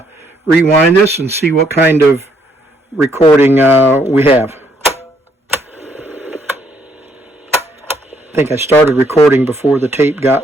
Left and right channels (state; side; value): normal; both; correlation 0.69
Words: rewind this and see what kind of recording we have. I think I started recording before the tape